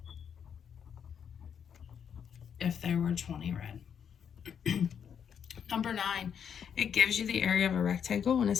if there were 20 red. Number 9, it gives you the area of a rectangle, and it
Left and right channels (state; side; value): quieter; right; 7.8 dB